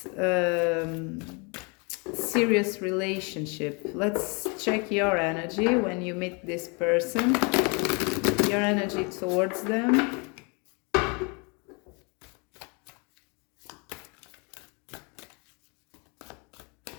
serious relationship? Let's check your energy when you meet this person, your energy towards them.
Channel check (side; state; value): right; quieter; 32.3 dB